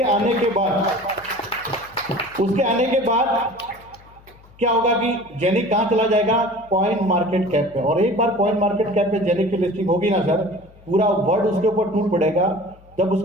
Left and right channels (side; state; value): left; noise; hum, 25 dB below the sound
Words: आने के बाद क्या होगा कि जेनिक कहां चला जाएगा, कॉइन मार्केट कैप पे। और एक बार कॉइन मार्केट कैप पे जेनिक की लिस्टिंग होगी ना सर, पूरा वर्ल्ड उसके ऊपर टूट पड़ेगा। जब